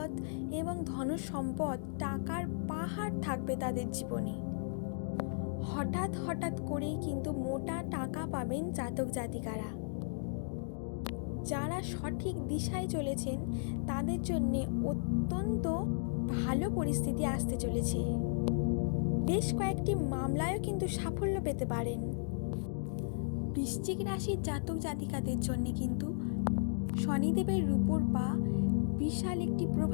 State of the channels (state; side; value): silent; right; digital silence